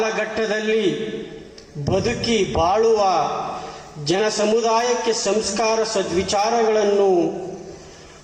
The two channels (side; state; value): both; identical; correlation 1.00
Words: ಬದುಕಿ ಬಾಳುವ ಜನ ಸಮುದಾಯಕ್ಕೆ ಸಂಸ್ಕಾರ ಸದ್ವಿಚಾರಗಳನ್ನು